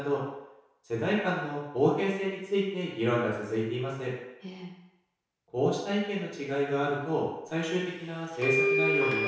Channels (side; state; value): both; identical; correlation 1.00